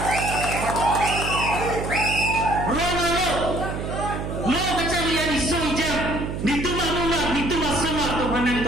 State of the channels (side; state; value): right; noise; hum, 5 dB below the sound